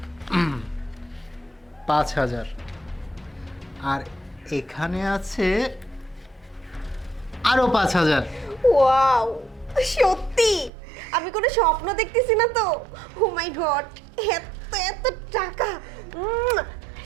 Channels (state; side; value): drops out; left; at 10.7 s